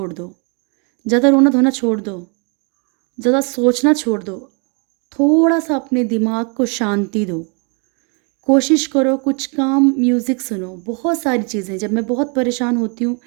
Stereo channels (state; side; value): quieter; left; 35.7 dB